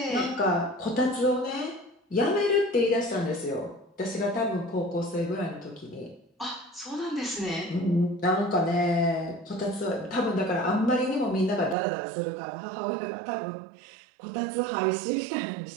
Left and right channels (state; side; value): drops out; left; at 11.8 s